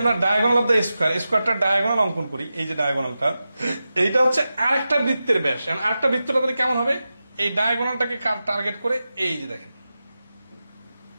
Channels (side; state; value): both; inverted; correlation -0.92